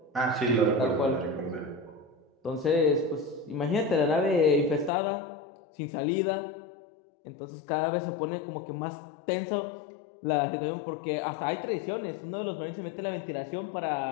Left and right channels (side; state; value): right; drops out; at 4.9 s